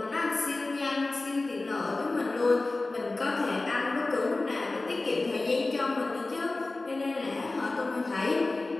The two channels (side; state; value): right; quieter; 3.2 dB